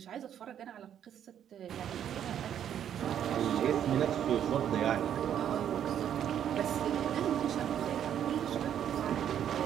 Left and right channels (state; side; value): quieter; left; 9.7 dB